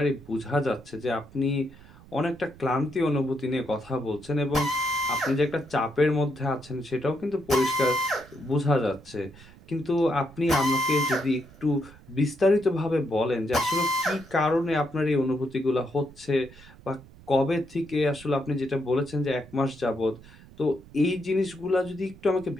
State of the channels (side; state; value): right; noise; rumble, 21 dB below the sound